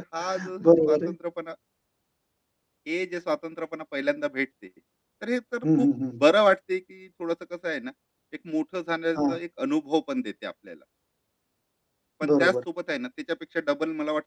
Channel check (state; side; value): identical; both; correlation 1.00